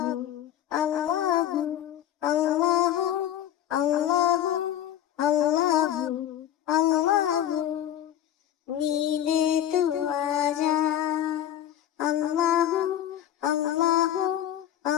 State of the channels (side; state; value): right; quieter; 11.4 dB